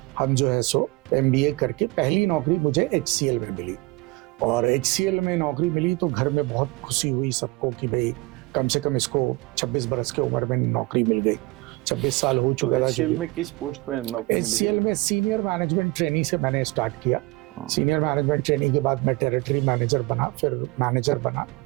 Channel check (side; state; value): left; quieter; 22.8 dB